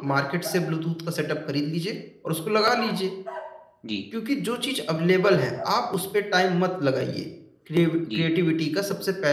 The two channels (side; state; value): both; identical; correlation 1.00